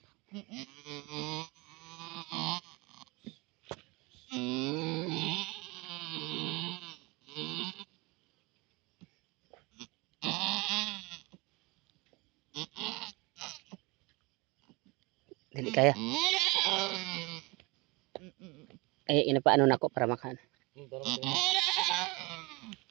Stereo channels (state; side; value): quieter; left; 25.3 dB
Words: Dili kaya. Ay, inapaano na ako para makan.